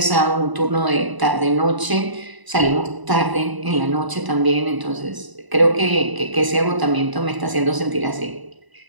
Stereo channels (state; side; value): late; left; 1.0 ms